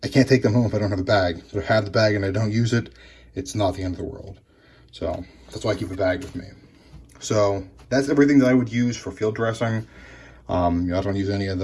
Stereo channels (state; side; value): identical; both; correlation 1.00